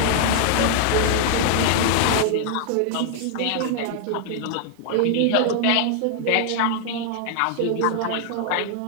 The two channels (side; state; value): both; different; correlation 0.00